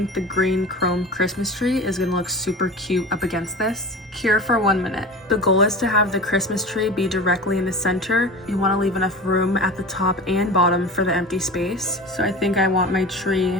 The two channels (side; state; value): both; normal; correlation 0.33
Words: the green chrome Christmas tree is gonna look super cute up against this. Cure for 1 minute. The goal is to have the Christmas tree be directly in the center. You want to leave enough room at the top and bottom for the empty space. So I think I want my tree